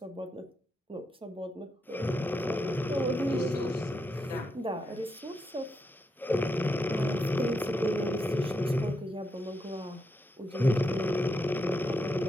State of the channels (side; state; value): both; normal; correlation 0.83